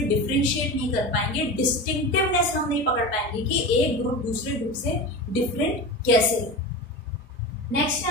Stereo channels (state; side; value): normal; both; correlation 0.27